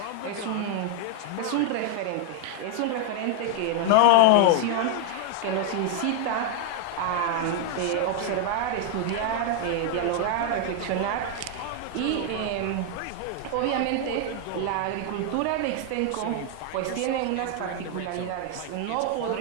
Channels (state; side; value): different; both; correlation 0.00